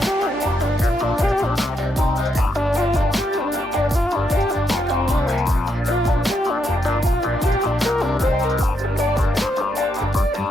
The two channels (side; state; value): both; normal; correlation 0.79